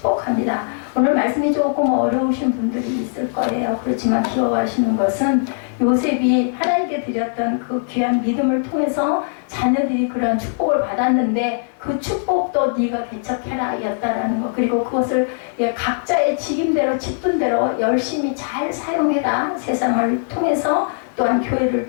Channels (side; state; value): right; silent; digital silence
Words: 오늘 말씀이 조금 어려우신 분들이 있을 거예요. 그렇지만 기억하시는 것은 요셉이 하나님께 드렸던 그 귀한 믿음을 통해서 자녀들이 그런 축복을 받았는데 그 축복도 네가 개척해라 였다라는 것, 그리고 그것을 각자의 직임대로 직분대로 열심히 잘 사용해라. 세상을 통해서 또한 교회를